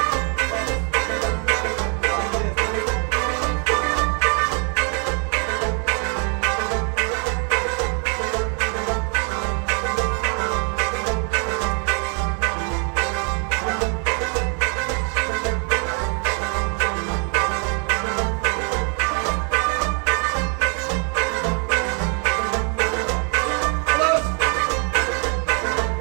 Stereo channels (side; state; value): left; quieter; 39.1 dB